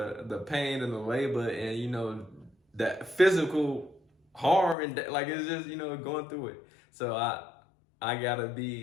the pain and the labor, and you know that physical harm, and like it's just, you know, going through it. So I gotta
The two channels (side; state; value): right; drops out; at 4.8 s